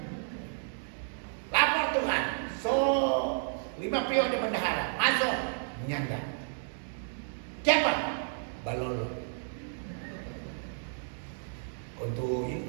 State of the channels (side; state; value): left; silent; digital silence